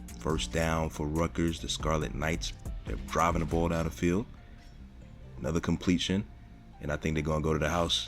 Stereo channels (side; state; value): both; identical; correlation 1.00